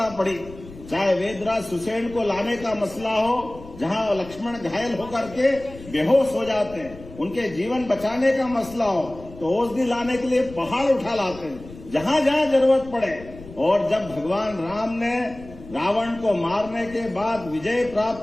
पड़ी, चाहे वेदराज सुसेन को लाने का मसला हो, जहां लक्ष्मण घायल होकर के बेहोश हो जाते हैं, उनके जीवन बचाने का मसला हो तो औषधि लाने के लिए पहाड़ उठा लाते हैं, जहां जहां जरूरत पड़े। और जब भगवान राम ने रावण को मारने के बाद, विजय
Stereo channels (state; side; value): noise; left; rumble, 17 dB below the sound